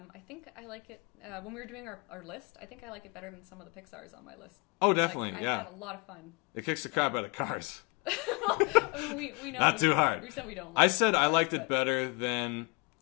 think I like it, when we were doing our list, I think I like it better than some of the Pixar's on my list. Oh, definitely, like, yeah. I had a lot of fun. It kicks the crap out of Cars. I mean, we know. Not too hard. We said we don't like I said I liked it better than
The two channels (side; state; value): right; quieter; 30.0 dB